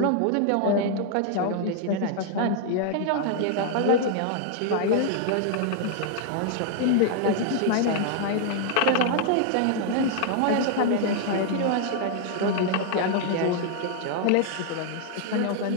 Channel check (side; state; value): both; different; correlation 0.00